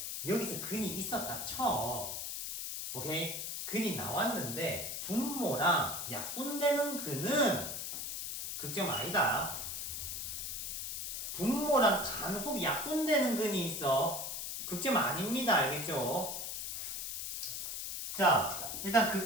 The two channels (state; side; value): noise; left; hiss, 4 dB below the sound